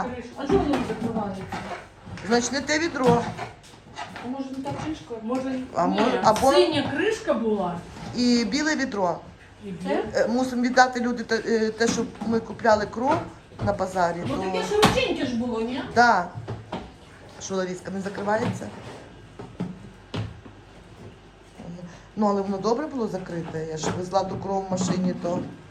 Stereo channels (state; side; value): identical; both; correlation 1.00